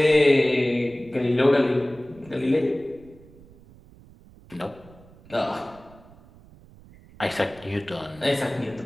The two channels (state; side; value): noise; right; rumble, 23 dB below the sound